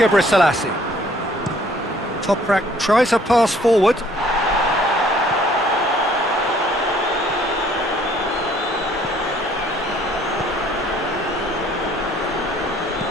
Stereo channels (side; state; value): both; normal; correlation 0.59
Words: Selassie. Toprak tries a pass forward.